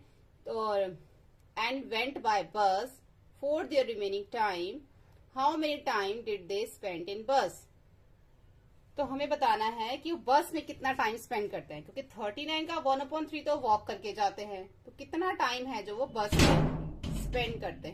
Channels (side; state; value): both; identical; correlation 1.00